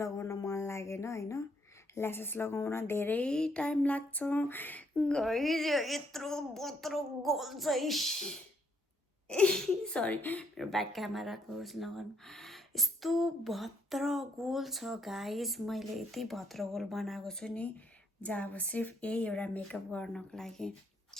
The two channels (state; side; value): normal; both; correlation 0.73